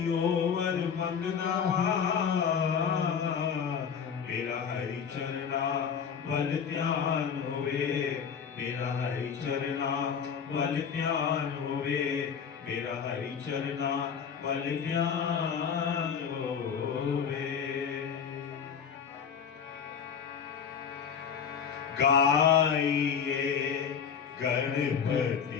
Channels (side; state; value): right; quieter; 7.0 dB